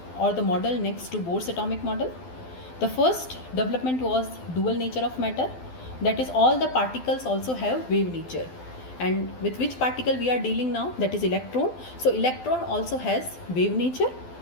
the model next to Bohr's atomic model. The first development was dual nature of matter, that is all the particles also have wave nature. And with which particle we are dealing now? That is electron. So electron also has wave nature.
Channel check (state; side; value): late; right; 12 ms